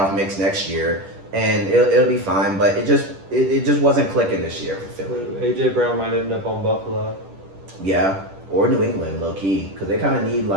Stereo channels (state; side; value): late; left; 10 ms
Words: mix next year, and it'll be fine. But it just wasn't clicking this year for Philly. A.J. Brown might end up on Buffalo. Yeah, or New England, low key, because they kind of need